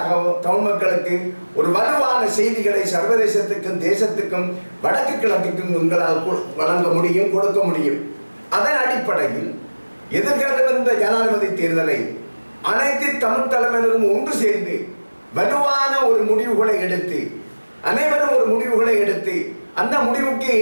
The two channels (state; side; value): inverted; both; correlation -1.00